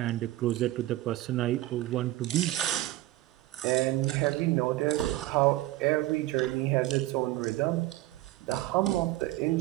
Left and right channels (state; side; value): quieter; left; 16.6 dB